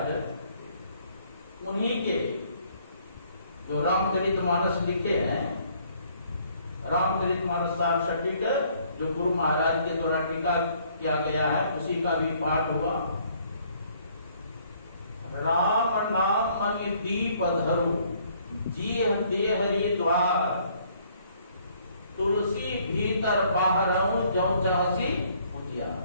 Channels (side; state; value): both; inverted; correlation -0.63